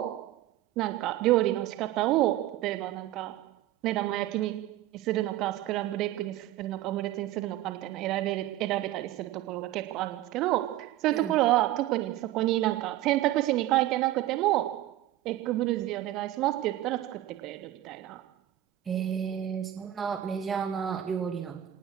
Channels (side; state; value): left; quieter; 14.0 dB